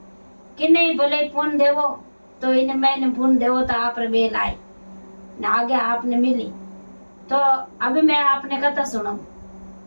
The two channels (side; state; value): both; inverted; correlation -1.00